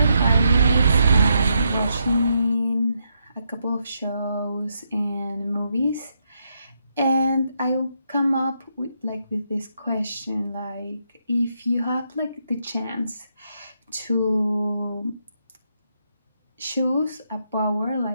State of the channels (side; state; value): both; inverted; correlation -0.79